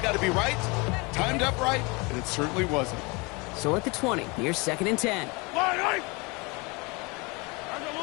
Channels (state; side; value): quieter; right; 27.6 dB